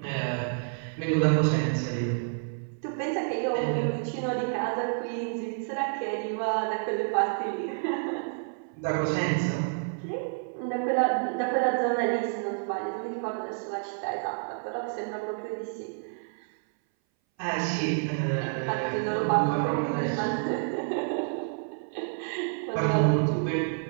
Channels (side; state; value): left; silent; 59 dB below the other